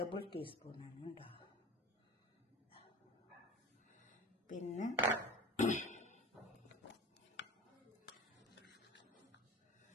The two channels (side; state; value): both; normal; correlation 0.35